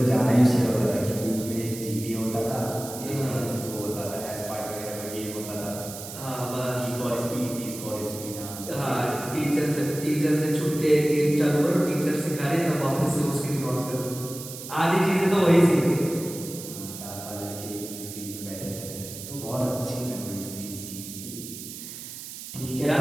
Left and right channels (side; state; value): right; noise; hiss, 11 dB below the sound